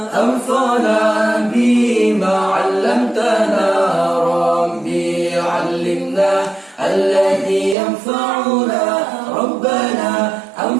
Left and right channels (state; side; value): drops out; left; at 7.8 s